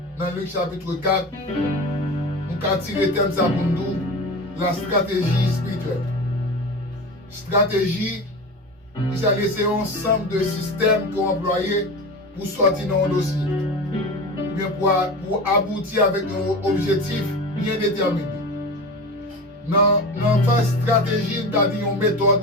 dans Luc chapitre 4, nous avons tiré le thème ça pour nous, la stratégie spirituelle. Stratégie, qui a laissé un ensemble de systèmes qu'on employé pour sortir dans un dossier. Bien pour aboutir avec un objectif bien déterminé. Dans la phase stratégie, nous avons dit une méthode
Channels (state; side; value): normal; both; correlation 0.29